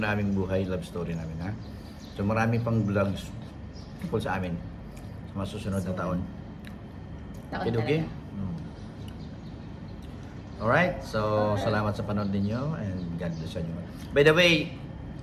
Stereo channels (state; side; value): identical; both; correlation 1.00